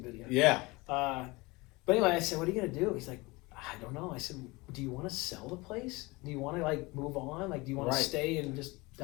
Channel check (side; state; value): right; quieter; 23.7 dB